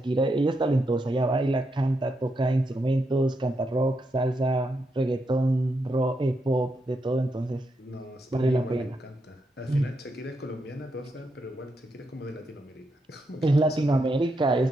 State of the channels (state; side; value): normal; both; correlation 0.82